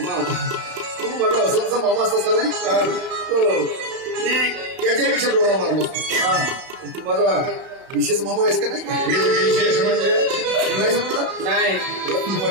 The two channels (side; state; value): left; late; 31 ms